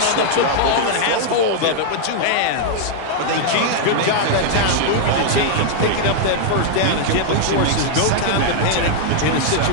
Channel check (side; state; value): both; different; correlation -0.01